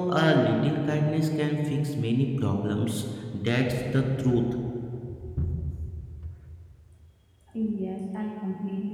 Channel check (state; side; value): identical; both; correlation 1.00